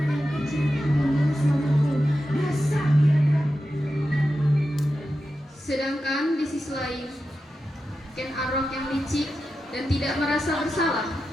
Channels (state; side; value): normal; both; correlation 0.90